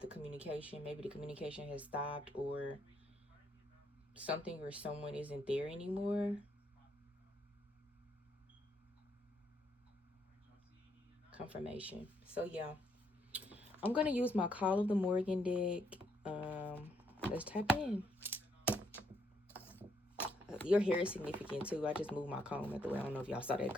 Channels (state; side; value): normal; both; correlation 0.74